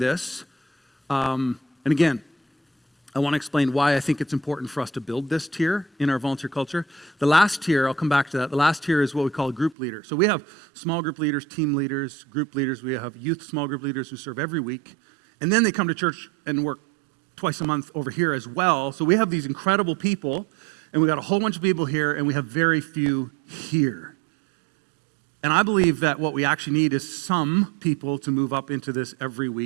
And again, I want to explain why I think it's important for us to build this tier in our volunteer culture. The last tier, I'll come back to that. The last tier is what we call a group leader. So we have small group leaders, team leaders, group leaders. We have youth small group leaders who serve every week. And then they come to church and work twice a month over here as well. So we have these incredible people, and we got a whole bunch of people here, and we have very few here. And I believe that what we actually need is some people to move up into this every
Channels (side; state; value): left; drops out; at 9.8 s